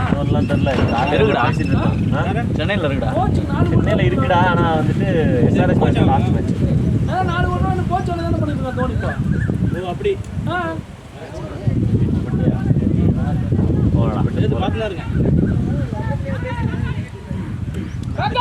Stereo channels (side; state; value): both; identical; correlation 1.00